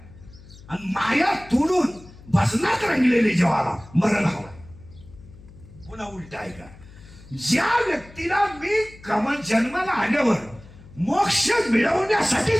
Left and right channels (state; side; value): noise; left; hum, 21 dB below the sound